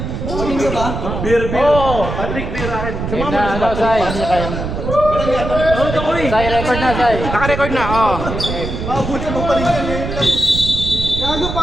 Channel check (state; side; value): noise; right; rumble, 5 dB below the sound